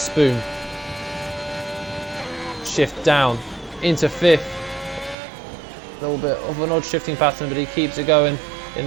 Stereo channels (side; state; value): left; drops out; at 5.2 s